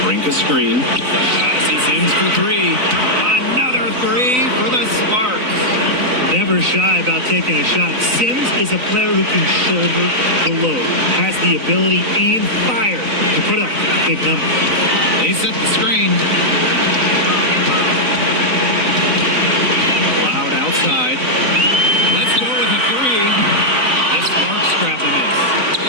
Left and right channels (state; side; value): late; left; 3.8 ms